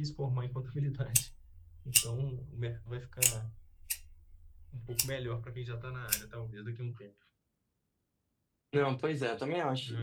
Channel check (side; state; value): both; identical; correlation 1.00